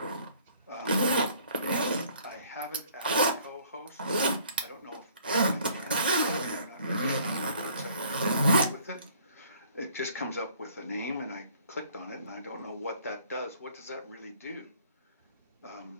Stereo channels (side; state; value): both; inverted; correlation -0.57